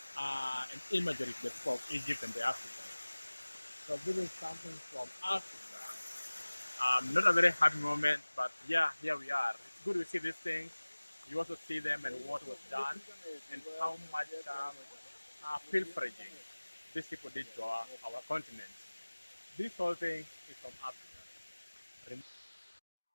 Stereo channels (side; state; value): both; inverted; correlation -1.00